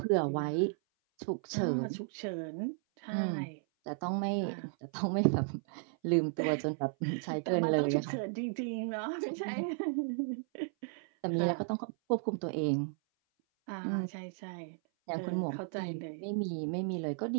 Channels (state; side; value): silent; left; 55 dB below the other